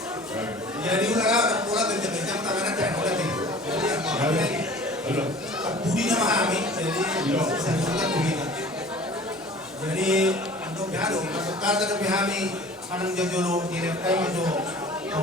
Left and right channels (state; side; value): normal; both; correlation 0.45